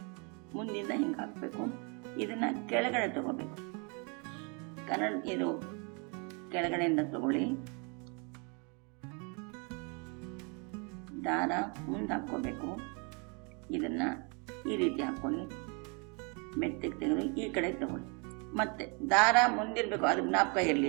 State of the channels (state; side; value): quieter; left; 33.8 dB